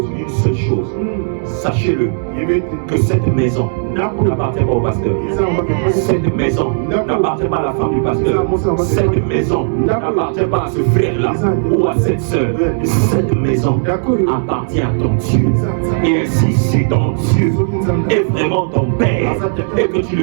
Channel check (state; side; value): silent; left; 68 dB below the other